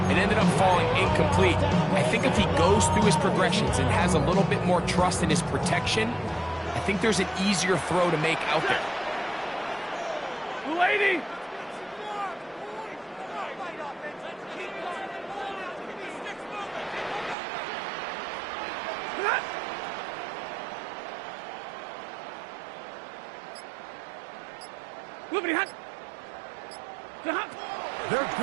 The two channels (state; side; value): drops out; left; at 17.4 s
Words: it ended up falling incomplete. I think if he goes through his progressions and has a little bit more trust in his protection, I think there's an easier throw to make out there. Lady. They're